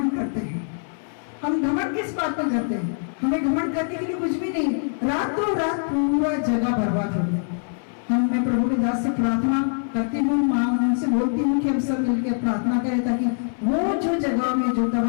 करते हैं। हम घमंड किस बात में करते हैं? हमें घमंड करने के लिए कुछ भी नहीं। रातों रात पूरा जगह बर्बाद हो गया। मैं प्रभु के दास से प्रार्थना करती हूँ, माँ उनसे बोलती हूँ कि हम सब मिलकर प्रार्थना करें ताकि वो जो जगह में जो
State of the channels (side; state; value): right; silent; 63 dB below the other